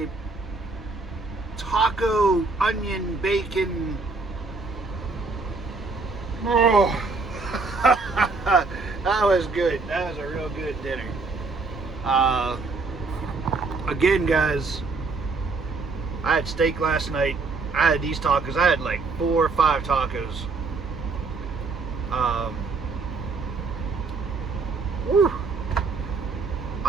taco, onion, bacon. Oh. That was good. That was a real good dinner. Again guys, I had steak last night. I had these tacos. I had like 4 or 5 tacos. Whew.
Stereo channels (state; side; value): quieter; left; 4.0 dB